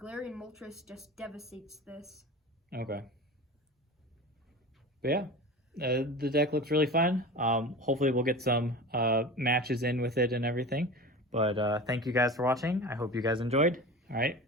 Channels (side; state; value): both; normal; correlation 0.32